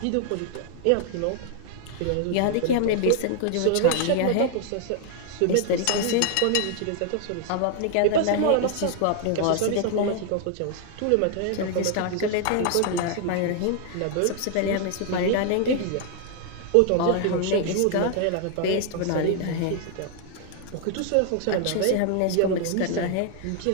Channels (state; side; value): different; both; correlation 0.00